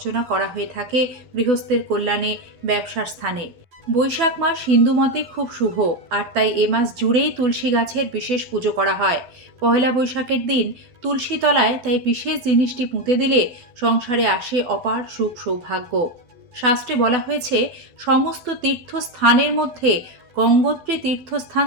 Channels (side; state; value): left; late; 12 ms